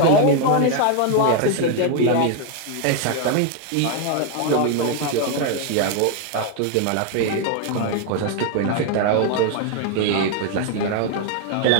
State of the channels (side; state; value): both; different; correlation 0.01